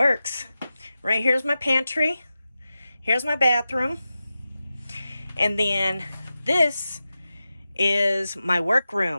Right here's my pantry. Here's my bathroom. And then this is my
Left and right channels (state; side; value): inverted; both; correlation -0.93